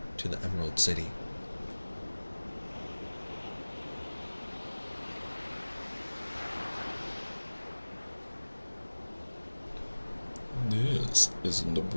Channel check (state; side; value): inverted; both; correlation -1.00